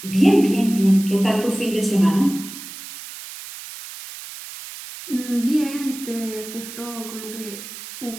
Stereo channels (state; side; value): noise; right; hiss, 13 dB below the sound